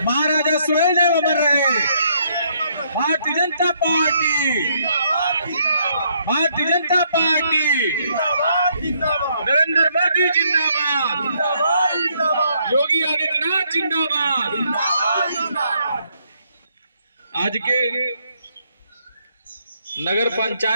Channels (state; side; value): inverted; both; correlation -0.71